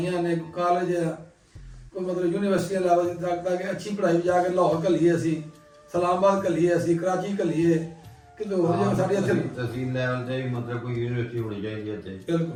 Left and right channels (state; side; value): identical; both; correlation 1.00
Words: ਨੇ, ਕਾਲਜ ਆ, ਕੋਈ ਮਤਲਬ ਯੂਨੀਵਰਸਿਟੀਆਂ ਲੈਵਲ ਤੱਕ ਕਿ ਅੱਛੀ ਪੜ੍ਹਾਈ ਜਾ ਕੇ ਲਾਹੌਰ ਘੱਲੀਏ, ਅਸੀਂ ਇਸਲਾਮਾਬਾਦ ਘੱਲੀਏ, ਅਸੀਂ ਕਰਾਚੀ ਘੱਲੀਏ, ਕਿ ਹੋਰ ਜਗ੍ਹਾ ਸਾਡੇ ਇੱਥੇ ਤਹਿਸੀਲ ਲੈਵਲ ਤੇ ਵੀ ਮਤਲਬ ਕੋਈ ਯੂਨੀਵਰਸਿਟੀ ਹੋਣੀ ਚਾਹੀਦੀ ਹੈ ਇੱਥੇ।